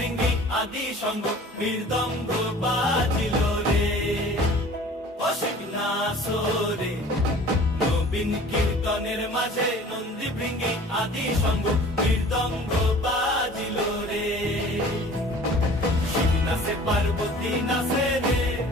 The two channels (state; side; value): normal; both; correlation 0.46